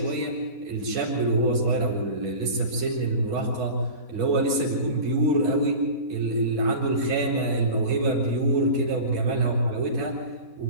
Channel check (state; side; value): late; left; 4.7 ms